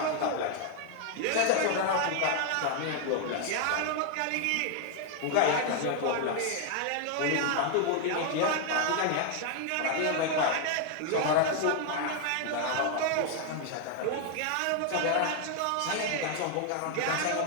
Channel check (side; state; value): both; different; correlation 0.00